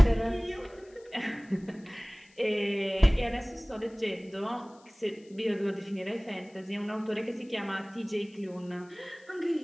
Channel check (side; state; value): left; noise; hiss, 29 dB below the sound